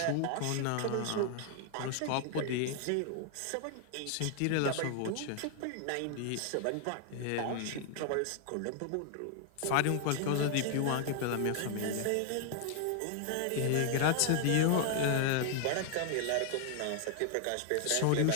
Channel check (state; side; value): different; both; correlation 0.00